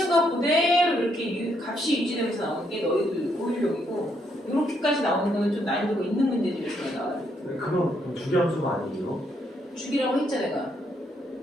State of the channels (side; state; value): both; normal; correlation 0.74